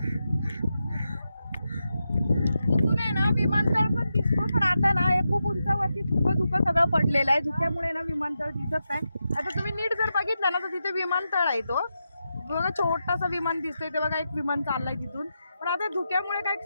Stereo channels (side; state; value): both; inverted; correlation -0.88